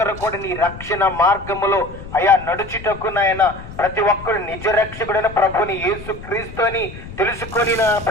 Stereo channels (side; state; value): left; noise; rumble, 14 dB below the sound